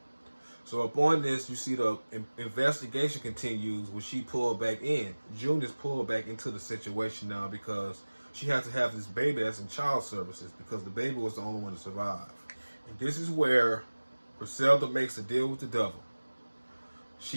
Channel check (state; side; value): inverted; both; correlation -1.00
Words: So upon this, you see the investigation continues when she pulled back in. June is pulled back into the situation now because she has to have this baby that's in child services because the baby was the only one to survive. And this is where Griselda makes a deal with the devil.